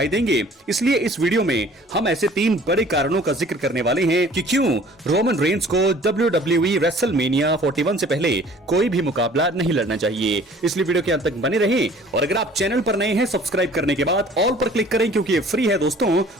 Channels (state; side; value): normal; both; correlation 0.51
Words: देंगे। इसलिए इस वीडियो में हम ऐसे 3 बड़े कारणों का जिक्र करने वाले हैं कि क्यों रोमन रेंस को डब्ल्यूडब्ल्यूई रेसलमेनिया 41 से पहले कोई भी मुकाबला नहीं लड़ना चाहिए। इसलिए वीडियो के अंत तक बने रहें और अगर आप चैनल पर नए हैं सब्सक्राइब करने के बाद ऑल पर क्लिक करें क्योंकि ये फ्री है दोस्तों